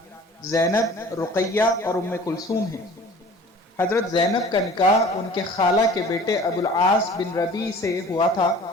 زینب، رقیہ اور ام کلثوم ہیں۔ حضرت زینب کا نکاح ان کے خالہ کے بیٹے ابو العاص بن ربیع سے ہوا تھا،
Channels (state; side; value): normal; both; correlation 0.46